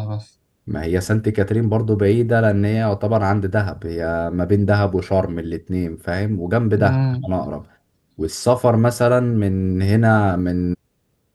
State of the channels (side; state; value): both; identical; correlation 1.00